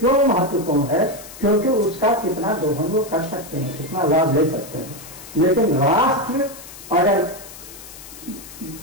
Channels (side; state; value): left; noise; hiss, 16 dB below the sound